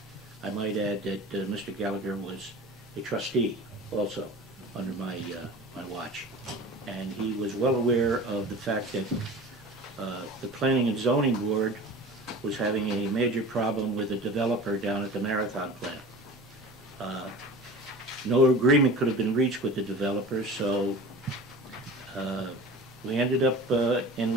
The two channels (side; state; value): both; normal; correlation 0.37